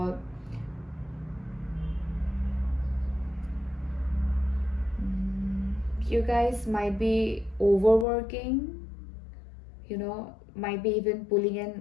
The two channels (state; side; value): drops out; right; at 8.1 s